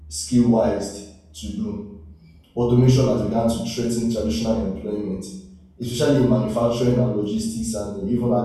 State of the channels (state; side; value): identical; both; correlation 1.00